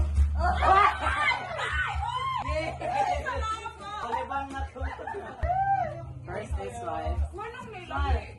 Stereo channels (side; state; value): both; identical; correlation 1.00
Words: Palibang na to. First is wife. Manong